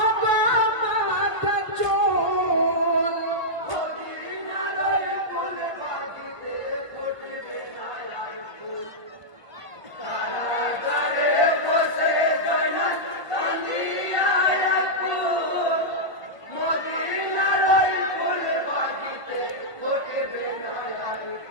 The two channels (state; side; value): late; right; 1.4 ms